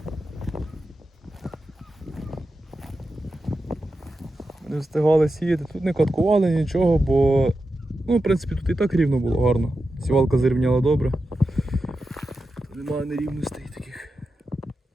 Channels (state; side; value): normal; both; correlation 0.90